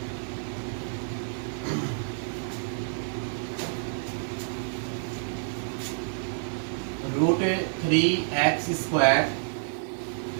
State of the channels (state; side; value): silent; left; digital silence